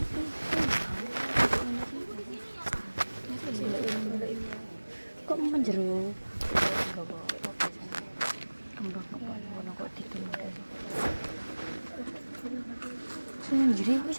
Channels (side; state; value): both; inverted; correlation -1.00